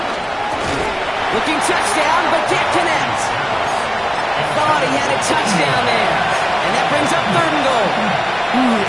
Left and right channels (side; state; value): both; identical; correlation 1.00